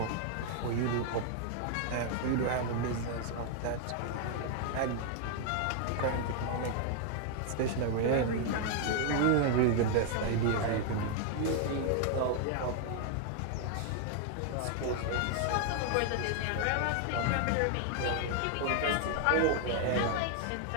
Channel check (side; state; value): both; different; correlation 0.00